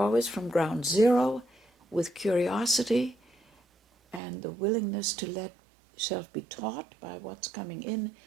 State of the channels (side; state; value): left; drops out; at 4.2 s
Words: from ground zero with curiosity and the willingness to let yourself be taught by what's coming in,